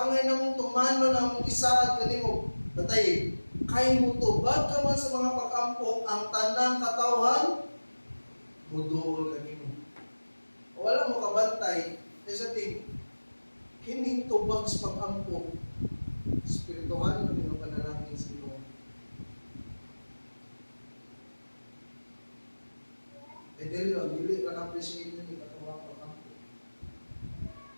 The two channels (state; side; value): inverted; both; correlation -1.00